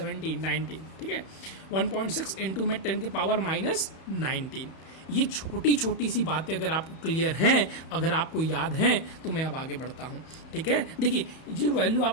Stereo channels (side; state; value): right; late; 31 ms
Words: 19, ठीक है, 1.6 × में 10 के पावर -19। ये छोटी छोटी सी बातें अगर आपको क्लियर हैं, अगर आपको याद हैं, तो मैं अब आगे बढ़ता हूँ, ठीक है। देखिए जो वैल्यू